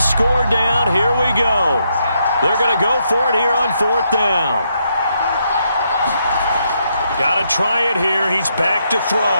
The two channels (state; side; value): inverted; both; correlation -0.78